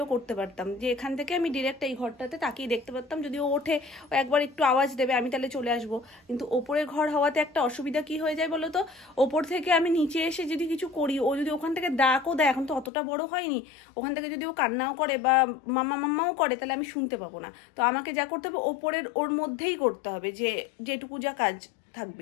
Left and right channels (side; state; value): right; drops out; at 12.9 s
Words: করতে পারতাম। যে এখান থেকে আমি ডিরেক্ট এই ঘরটাতে তাকিয়ে দেখতে পারতাম। যদি ও ওঠে, ও একবার একটু আওয়াজ দেবে, আমি তাহলে চলে আসবো। কিন্তু ওপরের ঘর হওয়াতে একটা অসুবিধা কি হয়ে যায় বলো তো, ওপর থেকে আমি নিচে এসে যদি কিছু করি, ও যদি ওখান থেকে ডাকও দেয়, এখন তো অতটা বড় হয়নি, ওখান থেকে যদি ও কান্নাও করে বা মাম্মাও করে, তাহলে আমি শুনতে পাবো না। তো আমাকে যা করতে হবে ওপরের ওর মধ্যেই করতে হবে, যে যেটুকু যা কাজ